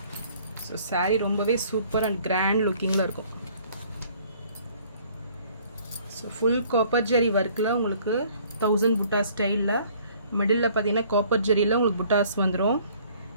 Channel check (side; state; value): both; inverted; correlation -0.57